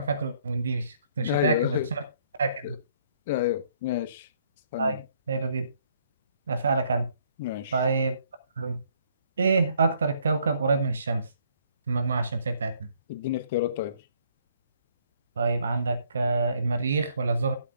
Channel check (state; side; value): inverted; both; correlation -0.66